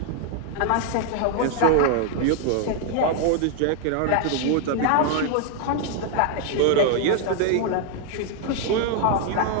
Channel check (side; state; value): both; different; correlation 0.00